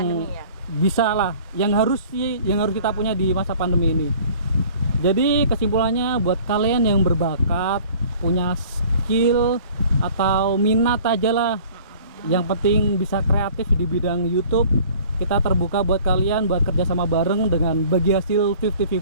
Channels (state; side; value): inverted; both; correlation -0.50